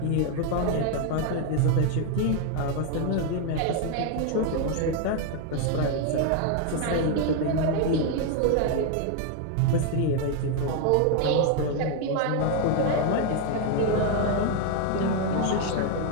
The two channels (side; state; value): both; different; correlation 0.00